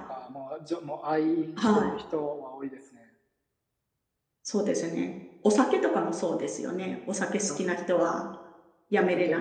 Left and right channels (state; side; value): identical; both; correlation 1.00